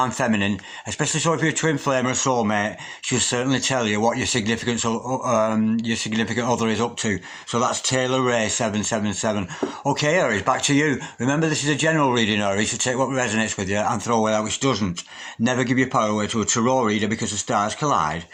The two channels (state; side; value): identical; both; correlation 1.00